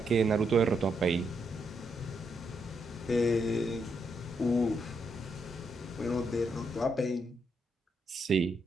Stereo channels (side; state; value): both; normal; correlation 0.78